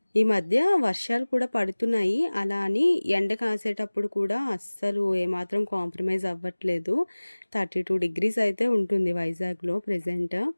ఈ మధ్య వర్షాలు కూడా పడుతున్నాయి. అలా అని ఎండ కాసేటప్పుడు కూడా అస్సలు ఏమాత్రం కాంప్రమైజ్ అవ్వట్లేదు. 32 డిగ్రీస్ అయితే ఉంటుంది వైజాగ్‌లో ప్రెజెంట్.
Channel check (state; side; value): inverted; both; correlation -1.00